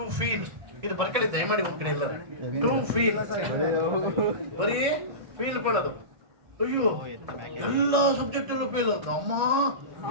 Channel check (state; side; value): late; left; 1.6 ms